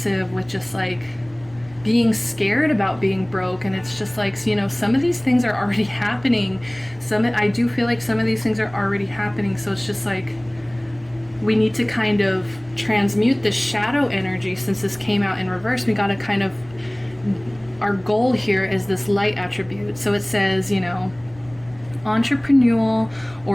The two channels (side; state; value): left; noise; rumble, 24 dB below the sound